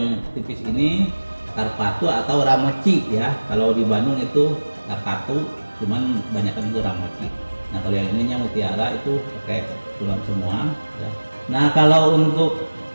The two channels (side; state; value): both; inverted; correlation -1.00